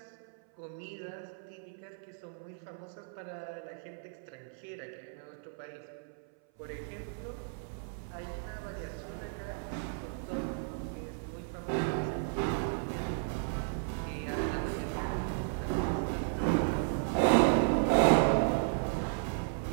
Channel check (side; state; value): left; silent; 55 dB below the other